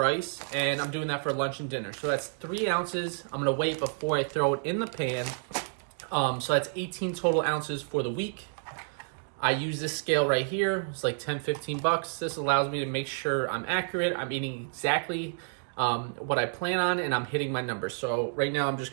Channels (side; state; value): left; silent; digital silence